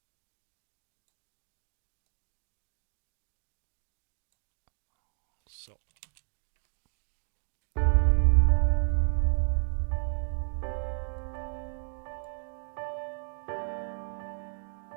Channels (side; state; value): left; silent; digital silence